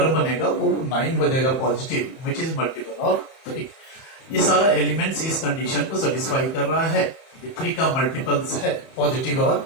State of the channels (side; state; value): right; late; 31 ms